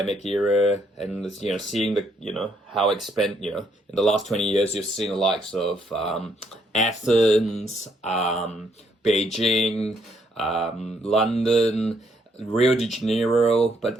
era, and seeing how in the last 20 years, you've seen the likes of Athens, Beijing, London, Rio de Janeiro, but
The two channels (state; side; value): normal; both; correlation 0.71